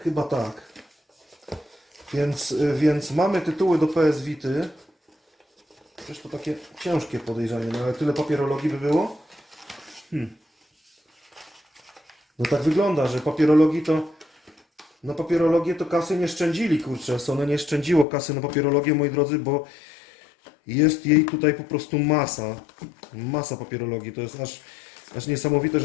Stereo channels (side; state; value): right; drops out; at 18.1 s